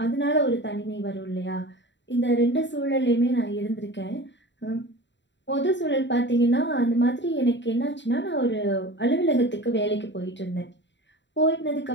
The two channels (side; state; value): right; late; 0.52 ms